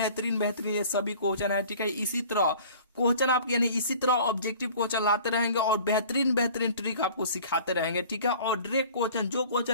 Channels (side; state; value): both; inverted; correlation -0.47